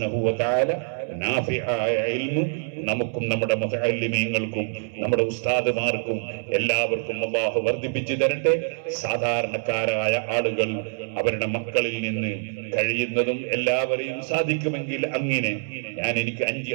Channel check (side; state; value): left; silent; 62 dB below the other